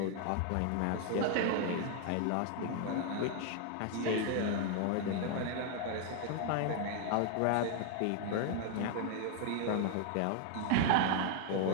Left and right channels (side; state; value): both; different; correlation 0.00